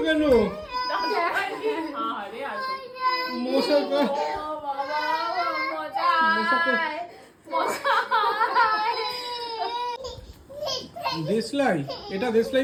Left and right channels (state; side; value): identical; both; correlation 1.00